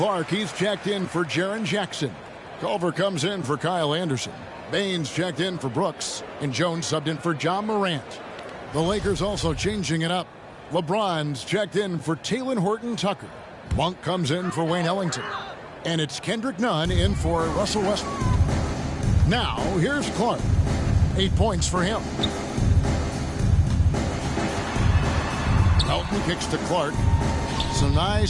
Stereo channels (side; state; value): both; identical; correlation 1.00